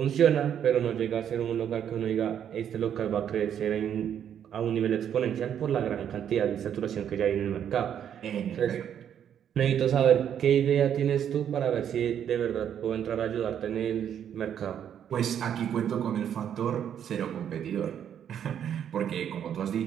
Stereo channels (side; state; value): left; quieter; 9.2 dB